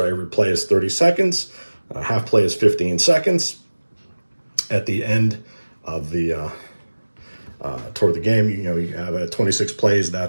every play is 30 seconds. Half play is 15 seconds. At the end of the toward the game, you have 26 plays.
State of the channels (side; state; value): both; inverted; correlation -1.00